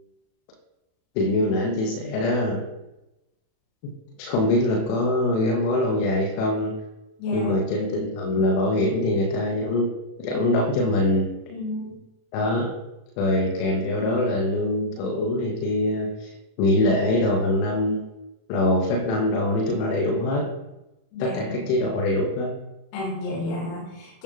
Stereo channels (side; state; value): right; late; 36 ms